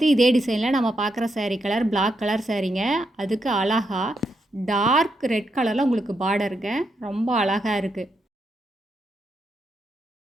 இதே டிசைனில் நம்ம பார்க்குற சாரீ கலர் பிளாக் கலர் சாரீங்க. அதுக்கு அழகாக டார்க் ரெட் கலரில் உங்களுக்கு பார்டருங்க. ரொம்ப அழகாக இருக்குது.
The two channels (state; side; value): normal; both; correlation 0.81